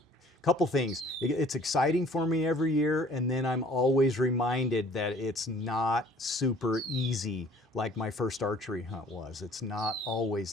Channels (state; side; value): normal; both; correlation 0.53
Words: Couple things. It's exciting for me every year, and then I'm always reminded that it's not super easy like my first archery hunt was. It's not always